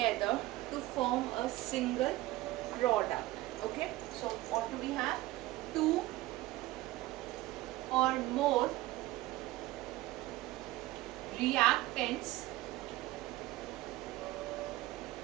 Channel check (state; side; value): quieter; left; 17.7 dB